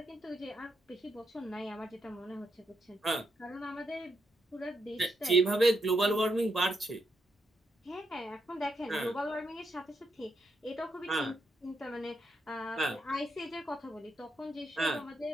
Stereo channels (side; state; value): both; normal; correlation 0.80